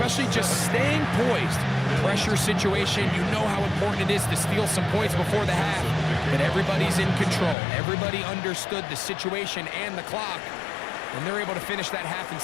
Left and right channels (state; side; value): drops out; right; at 7.6 s